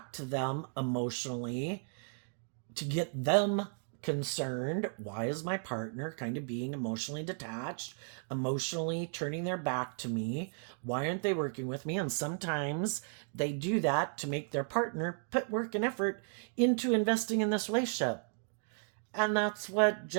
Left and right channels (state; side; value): silent; left; 55 dB below the other